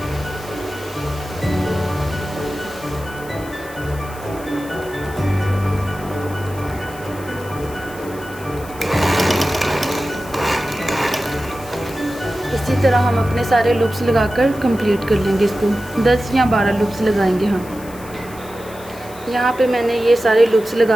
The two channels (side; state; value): left; noise; hiss, 19 dB below the sound